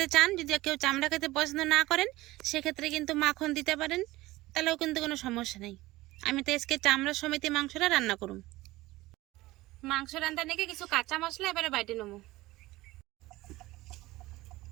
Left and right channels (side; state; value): left; quieter; 18.7 dB